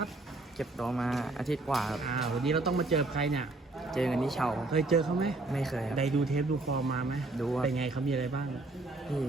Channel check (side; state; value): left; quieter; 3.1 dB